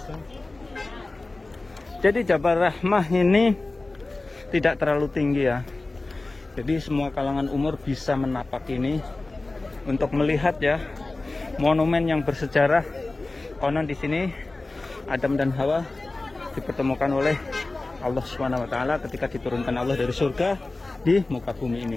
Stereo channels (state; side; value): quieter; right; 3.2 dB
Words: Jadi Jabal Rahmah ini tidak terlalu tinggi ya. Jadi semua kalangan umur bisa menapak ini untuk melihat ya monumen yang bersejarah. Konon di sini Adam dan Hawa dipertemukan oleh Allah Subhanahu wa taala ketika diturunkan Allah dari surga di muka bumi